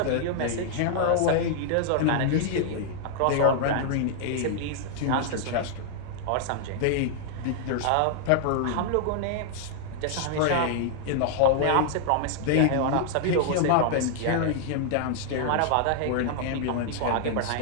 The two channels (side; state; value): both; different; correlation 0.00